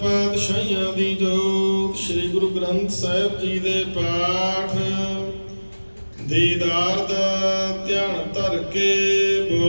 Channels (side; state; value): both; inverted; correlation -1.00